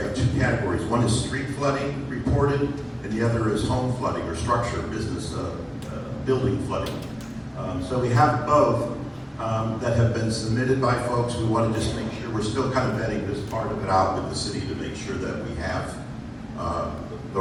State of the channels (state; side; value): identical; both; correlation 1.00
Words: two categories. One is street flooding reported, and the other is home flooding or structure, business, building flooding. So we have both that have been submitted by folks. We want to just make sure we're still kind of vetting this part of it out with the city to make sure that we have the